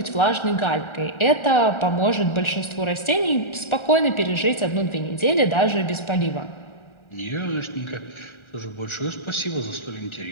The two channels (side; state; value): right; late; 1.4 ms